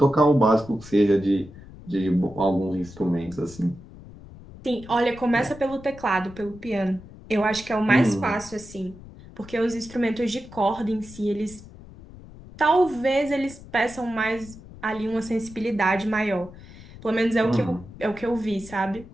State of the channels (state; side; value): noise; left; rumble, 18 dB below the sound